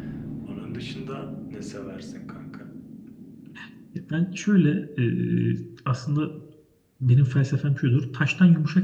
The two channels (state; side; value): identical; both; correlation 1.00